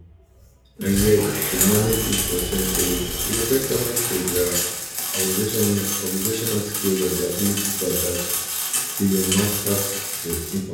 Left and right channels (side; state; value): both; identical; correlation 1.00